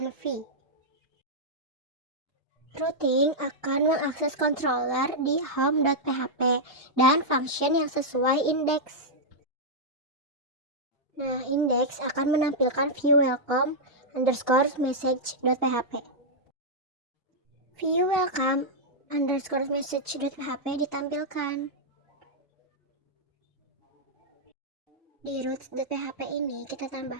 Routing akan mengakses controller di home.php dan function yang sesuai indeks. Nah, indeks akan menampilkan view welcome underscore message.php. View welcome underscore message.php ditampilkan. Di root.php ini kita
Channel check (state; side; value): normal; both; correlation -0.06